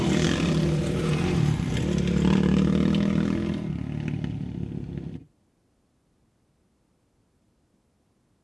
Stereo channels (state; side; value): identical; both; correlation 1.00